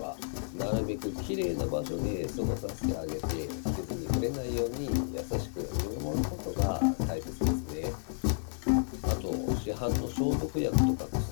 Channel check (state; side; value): silent; right; digital silence